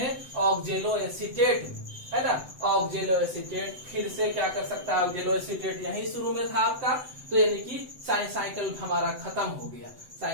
ऑक्जेलो एसीटेट में, है ना। ऑक्जेलो एसीटेट फिर से क्या कर सकता है, ऑक्जेलो एसीटेट यही शुरू में था आपका, तो यानी कि साइकिल हमारा खत्म हो गया,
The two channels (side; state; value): left; late; 7.9 ms